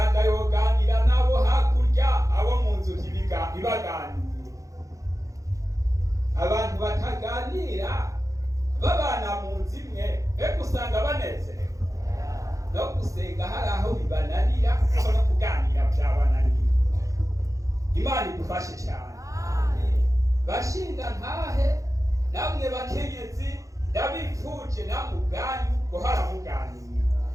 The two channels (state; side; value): late; left; 0.16 ms